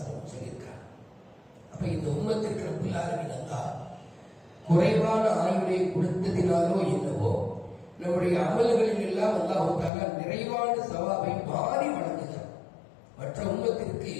அலைஹி சொல்லியிருக்கிறார். அப்ப இந்த உம்மத்திற்கு ரப்பல் ஆலமீன் அல்லாஹ் குறைவான ஆயுளை கொடுத்ததினாலோ என்னவோ நம்முடைய அமல்களில் எல்லாம் அல்லாஹ் தஆலா நிறைவான சவாபை மாறி வழங்குகிறார். மற்ற உம்மத்திற்கு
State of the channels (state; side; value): drops out; right; at 9.9 s